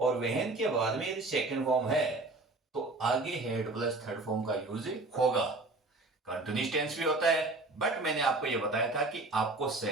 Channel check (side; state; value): left; quieter; 3.1 dB